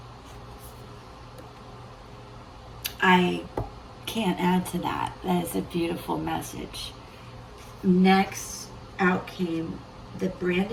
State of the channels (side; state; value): both; identical; correlation 1.00